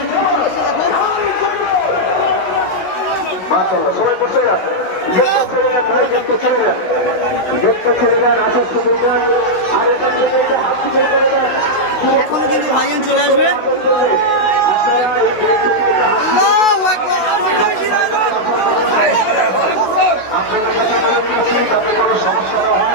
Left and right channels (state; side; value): late; right; 16 ms